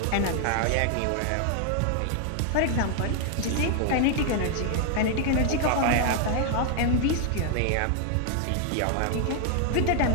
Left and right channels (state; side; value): different; both; correlation 0.00